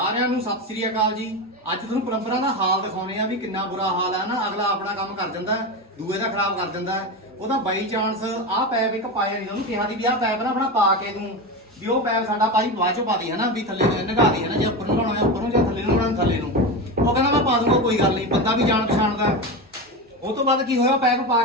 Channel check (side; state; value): both; normal; correlation 0.20